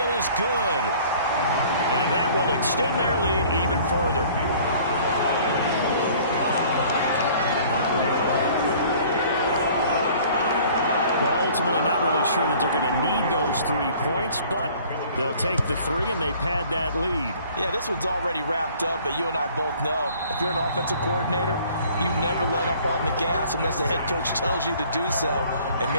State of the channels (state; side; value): inverted; both; correlation -0.52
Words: is good. And that will extend their lead even further. Well, ultimately not really sure that they're going to need those 3 points, but they'll take the 3 and they pad that lead. Yeah, this one's already wrapped up, but you and I both know if you're an offensive coordinator, you never let up on the gas unless the head coach tells you to do so. And